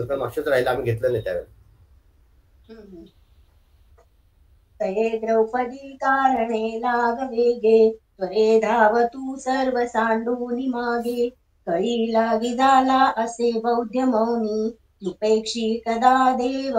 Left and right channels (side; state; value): both; identical; correlation 1.00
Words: का मागच्या वेळेस राहिलं आम्ही घेतलं नाही त्यावेळेला. तये द्रौपदी कारणे लाग वेगे, त्वरे धाव तू सर्व सांडूनी मागे. कळी लागी झाला असे बौद्ध मौनी, उपेक्षी कदा देव